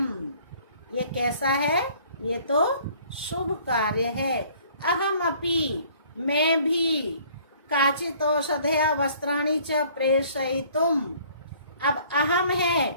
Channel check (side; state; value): both; inverted; correlation -0.56